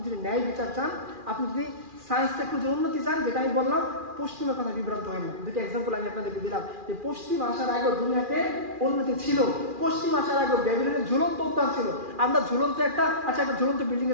যদি ন্যায় বিচার চান, আপনি যদি সায়েন্স টেকনোলজির উন্নতি চান, যেটা আমি বললাম পশ্চিমের কথা বিভ্রান্ত হয় না। দুটো এক্সাম্পল আমি আপনাদেরকে দিলাম যে পশ্চিম আসার আগে দুনিয়াতে উন্নতি ছিল। পশ্চিম আসার আগে ব্যাবিলনের ঝুলন্ত উদ্যান ছিল। আমরা ঝুলন্ত একটা ঝুলন্ত বিল্ডিং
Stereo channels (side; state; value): left; late; 2.4 ms